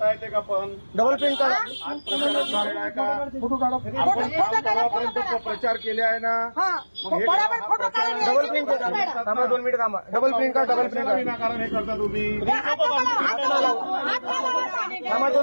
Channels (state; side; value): inverted; both; correlation -1.00